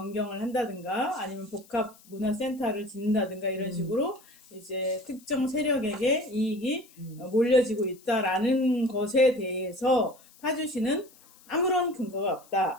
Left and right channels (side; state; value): left; noise; hiss, 26 dB below the sound